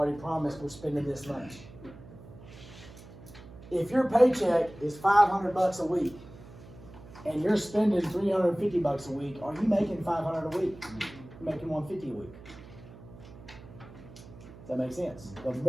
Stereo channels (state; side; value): noise; right; hum, 18 dB below the sound